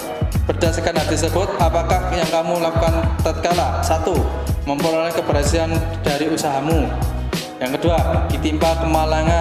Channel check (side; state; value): both; identical; correlation 1.00